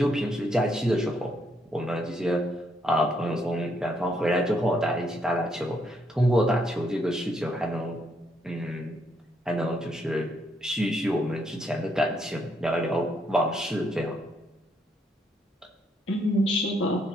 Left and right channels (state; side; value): normal; both; correlation 0.74